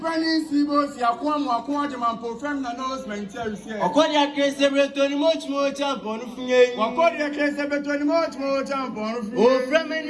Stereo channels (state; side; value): identical; both; correlation 1.00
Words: Seabos, Yaquam, preferring announcement here. According to case, every much more tampon. According to case, every much more tampon. Oh, from